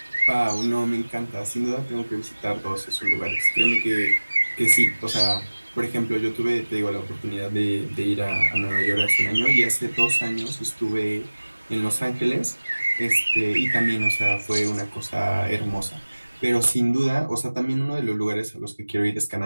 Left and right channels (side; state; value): both; inverted; correlation -1.00